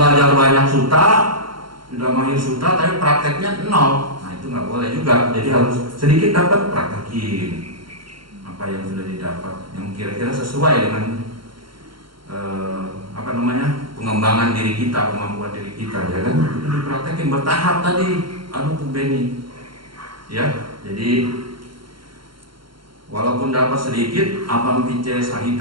banyak sutta, sudah mahir sutta, tapi prakteknya 0. Nah, itu nggak boleh juga. Jadi harus sedikit dapat, praktekin apa yang sudah didapat, yang kira-kira sesuai dengan pengembangan diri kita, kemampuan diri kita, ya kan? Itu dipraktekin bertahap tadi, Beni. Ya, jadi walaupun dapat sedikit, apam pice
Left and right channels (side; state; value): left; late; 0.73 ms